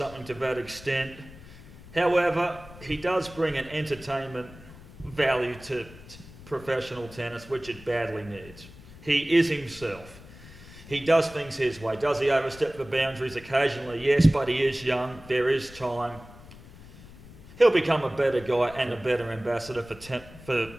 to that extent. However, he does bring an entertainment value to professional tennis, which it badly needs. He is himself. He does things his way. Does he overstep the boundaries occasionally? Yes, but he is young. There is time. He'll become a better guy and a better ambassador for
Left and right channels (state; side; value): noise; left; rumble, 19 dB below the sound